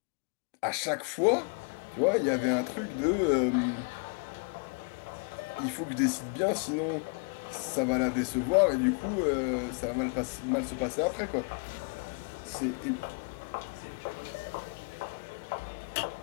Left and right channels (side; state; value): right; quieter; 35.2 dB